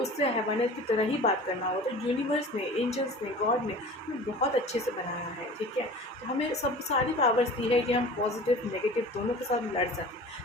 हैवानियत की तरह ही बात करना होगा। तो यूनिवर्स ने, एंजल्स ने, गॉड ने हमें बहुत अच्छे से बनाया है, ठीक है। तो हमें सब सारी पावर्स दी है कि हम पॉजिटिव नेगेटिव दोनों के साथ लड़ सकें।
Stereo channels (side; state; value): both; normal; correlation 0.40